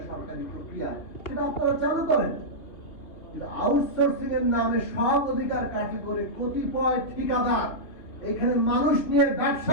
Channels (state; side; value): late; right; 2.8 ms